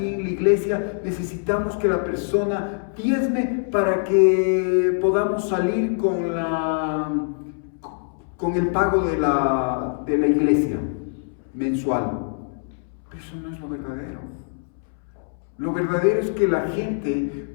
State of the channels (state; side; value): silent; right; 63 dB below the other